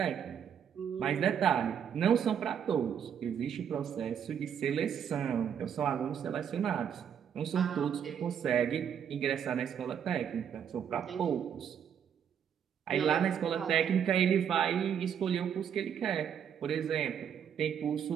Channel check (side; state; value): left; quieter; 8.3 dB